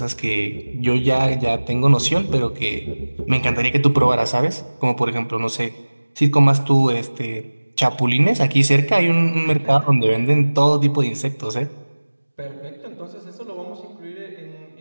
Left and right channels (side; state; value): both; inverted; correlation -1.00